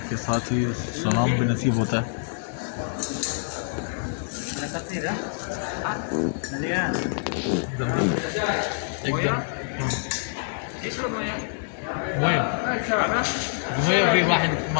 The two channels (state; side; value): silent; right; digital silence